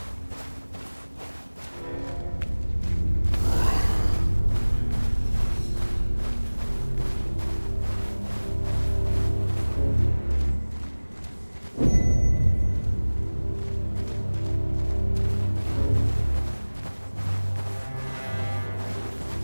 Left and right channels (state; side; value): inverted; both; correlation -1.00